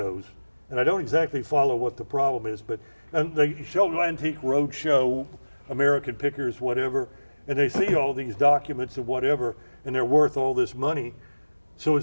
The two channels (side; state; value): both; inverted; correlation -1.00